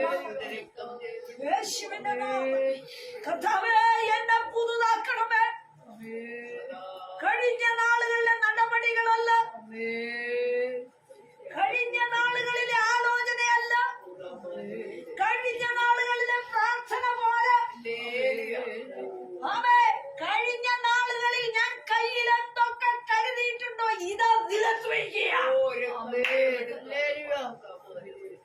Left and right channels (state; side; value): identical; both; correlation 1.00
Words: യേശുവിന്റെ നാമത്തിൽ കർത്താവേ എന്നെ പുതുതാക്കണമേ. കഴിഞ്ഞ നാളുകളിലെ നടപടികളല്ല, കഴിഞ്ഞ നാളുകളിലെ ആലോചനയല്ല, കഴിഞ്ഞ നാളുകളിലെ പ്രാർത്ഥന പോലെ കഴിഞ്ഞ നാളുകളിൽ ഞാൻ കയ്യിൽ എന്തൊക്കെ കരുതിയിട്ടുണ്ടോ ഇതാ നിലത്ത് വയ്ക്കുക.